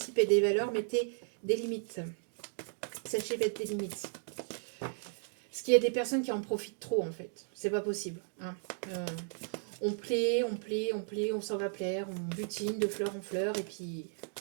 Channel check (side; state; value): left; silent; digital silence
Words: et des valeurs, mettez des limites. Sachez mettre des limites. Parce qu'il y a des personnes qui en profitent trop, en fait. C'est pas possible. Hein. On plaît, on s'en va plaire, on butine de fleur en fleur, et